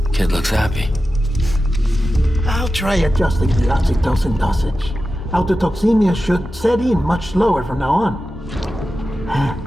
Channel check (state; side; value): normal; both; correlation 0.93